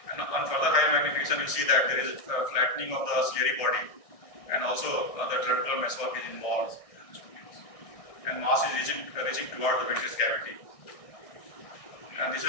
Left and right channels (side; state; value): right; late; 1.6 ms